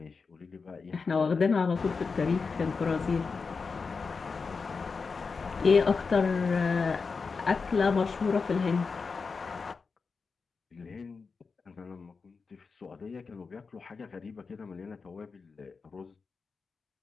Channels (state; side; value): quieter; right; 4.8 dB